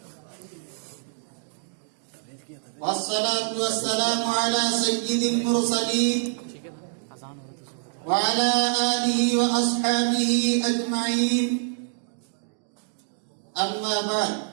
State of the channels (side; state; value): left; silent; digital silence